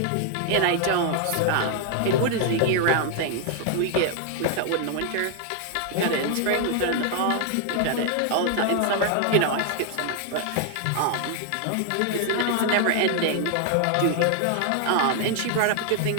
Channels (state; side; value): different; both; correlation 0.00